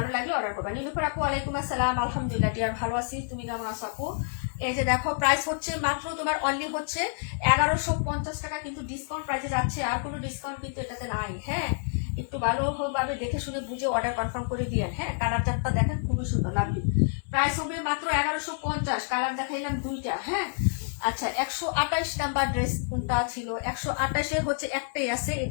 লাগলে অর্ডার করবা। নীলুফার আপু ওয়ালাইকুম আসসালাম, আলহামদুলিল্লাহ ডিয়ার ভালো আছি, তুমি কেমন আছো আপু? এই যে দেখো প্রাইস হচ্ছে মাত্র তোমার অনলি হচ্ছে 1150 টাকা, কিন্তু ডিসকাউন্ট প্রাইসে যাচ্ছে, আর কোনো ডিসকাউন্ট কিন্তু এটাতে নাই। হ্যাঁ একটু ভালোভাবে দেখে শুনে বুঝে অর্ডার কনফার্ম করে দিয়েন। হ্যাঁ কালার চারটা দেখেন খুবই সুন্দর লাভলি। প্রাইস হবে মাত্র 1150, কালার দেখাইলাম দুইটা। হ্যাঁ আচ্ছা 128 নাম্বার ড্রেস কোনটা ছিল? 128 হচ্ছে একটাই আছে,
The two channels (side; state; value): right; silent; digital silence